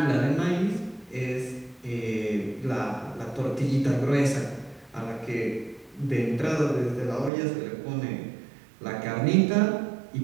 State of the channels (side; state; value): left; drops out; at 7.3 s